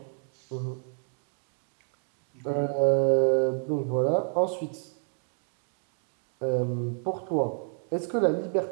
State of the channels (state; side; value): silent; left; 58 dB below the other